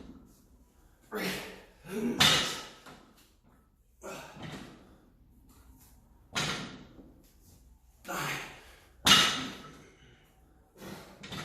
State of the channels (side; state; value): both; identical; correlation 1.00